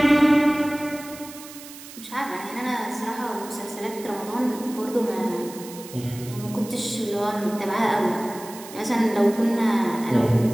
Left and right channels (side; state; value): right; noise; hiss, 16 dB below the sound